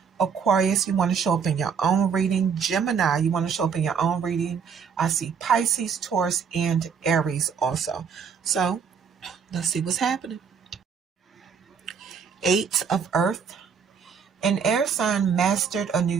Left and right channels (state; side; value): quieter; left; 6.6 dB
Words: Aquarius, you want to show up in your own reading. Gemini, you want to show up in your own reading. I see Pisces, Taurus, and Aries also. So let's see what's happening. 8 of earth. An air sign mastered a